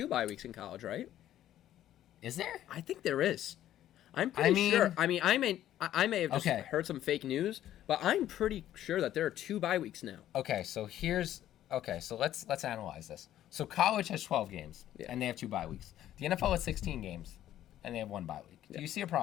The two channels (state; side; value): quieter; right; 12.4 dB